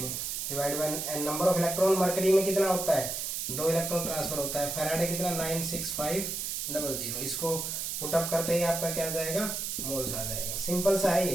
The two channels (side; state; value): right; noise; hiss, 3 dB below the sound